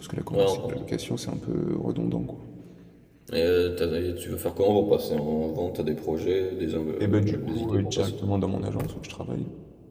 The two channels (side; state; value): both; identical; correlation 1.00